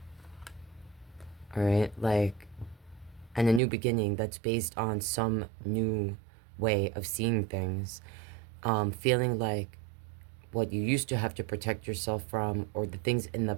All right, like, and a new beginning that's based on some new way of seeing things. Feeling like what you used to have to protect yourself from, or the things in the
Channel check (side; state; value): left; drops out; at 3.6 s